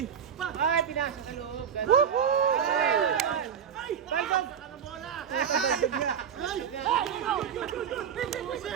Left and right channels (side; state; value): left; quieter; 7.9 dB